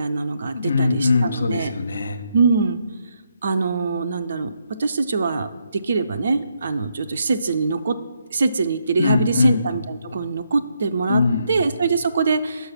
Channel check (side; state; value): both; inverted; correlation -0.77